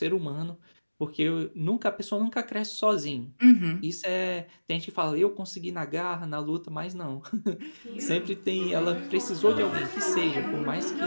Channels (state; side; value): inverted; both; correlation -1.00